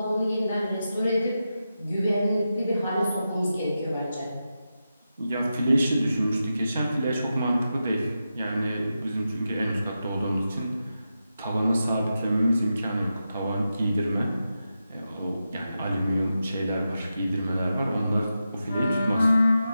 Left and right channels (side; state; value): both; inverted; correlation -0.90